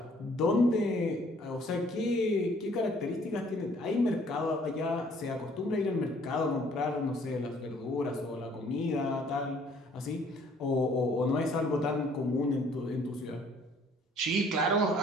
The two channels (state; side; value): normal; both; correlation 0.60